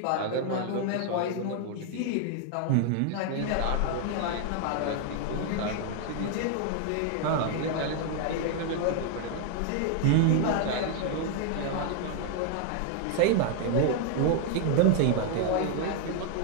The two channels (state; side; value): different; both; correlation 0.00